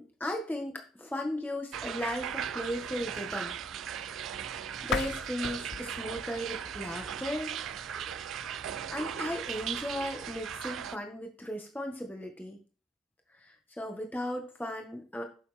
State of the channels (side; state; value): both; normal; correlation 0.68